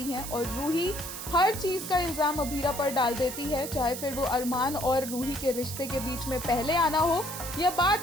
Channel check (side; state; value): right; noise; hiss, 8 dB below the sound